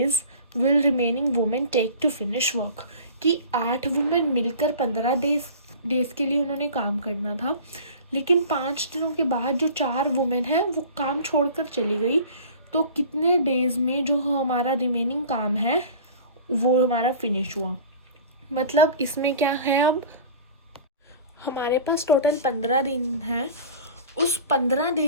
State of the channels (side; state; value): both; inverted; correlation -0.40